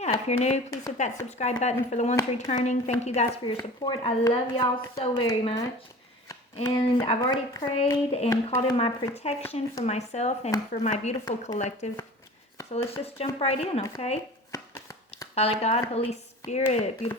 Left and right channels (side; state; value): both; normal; correlation 0.39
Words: if you're new, please hit that subscribe button. For the ones returning, thank you guys for your support. I love y'all so very much. And I've already prayed and called in my protection for myself and for my beautiful collective. So let's just jump right in, okay? Father God, Holy Spirit,